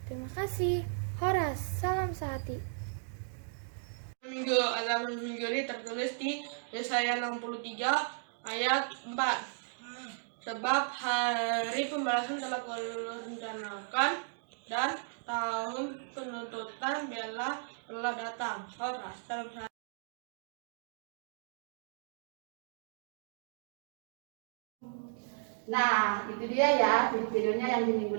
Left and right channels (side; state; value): left; silent; digital silence